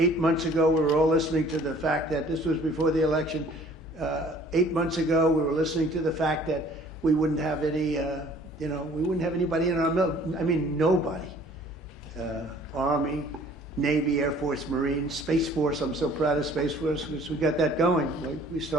months ago we were all listening to the fact that this was before the election. 8 months ago we were listening to the fact that we wouldn't have any, you know, we wouldn't have anybody in our military. I mean, nobody. Army, Navy, Air Force, Marines, Space Force. I'm so proud of Space Force because we got that going. We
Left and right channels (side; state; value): both; normal; correlation 0.54